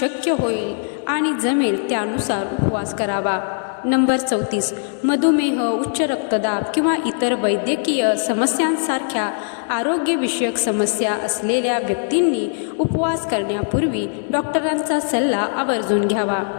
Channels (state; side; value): silent; right; 66 dB below the other